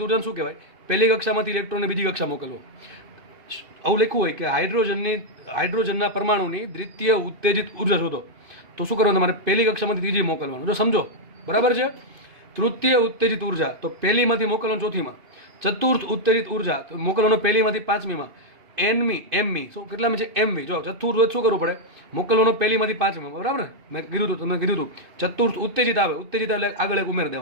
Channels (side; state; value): left; late; 2.8 ms